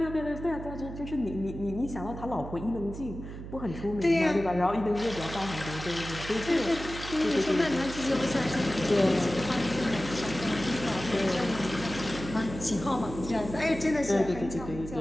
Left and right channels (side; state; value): right; noise; hum, 10 dB below the sound